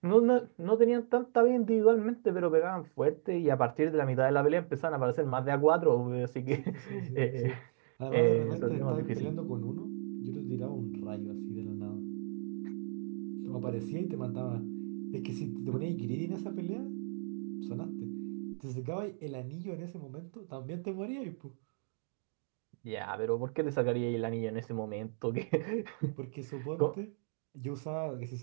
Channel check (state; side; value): silent; left; digital silence